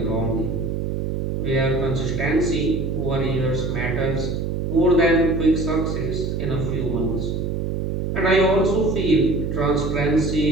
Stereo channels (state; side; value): noise; right; hum, 1 dB below the sound